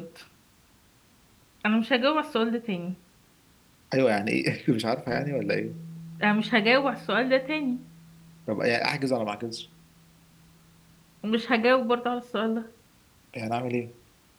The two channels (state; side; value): identical; both; correlation 1.00